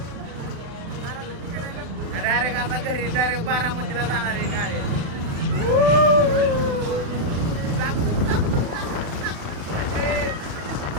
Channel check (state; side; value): late; left; 36 ms